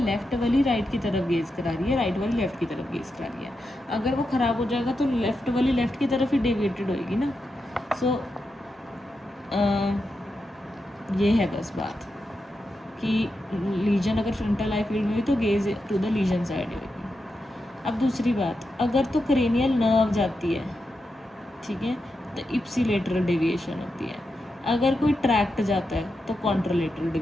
लेफ्ट वाली राइट की तरफ गेज करा रही है, राइट वाली लेफ्ट की तरफ गेज करा रही है। अगर वो ख़राब हो जाएगा तो लेफ्ट वाली लेफ्ट की तरफ ही डेविएटेड होएगी ना। सो ये है बस बात कि लीजन अगर फ्रंटल आई फील्ड में हुई तो gaze to the lesion side होगी। अब दूसरी बात, अगर तो क्रेनियल नर्व जाती है, ठीक है, तो इप्सिलेटरल डेविएशन होती है। अगर कोई ट्रैक्ट जाता है तो कॉन्ट्रालेटरल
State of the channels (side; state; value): both; normal; correlation 0.87